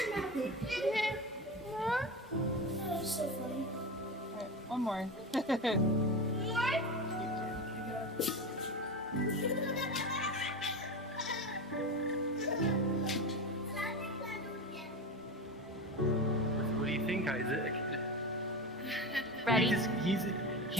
So funny. Alright, one more. What do you think, Isaac? Ready? He's in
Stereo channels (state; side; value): normal; both; correlation 0.24